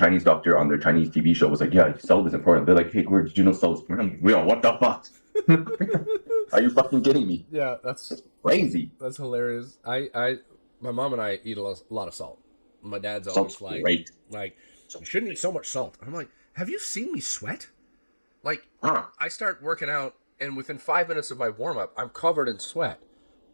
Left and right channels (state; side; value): inverted; both; correlation -1.00